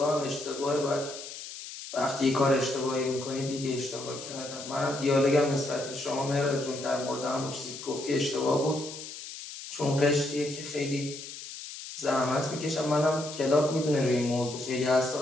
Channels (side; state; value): left; noise; hiss, 11 dB below the sound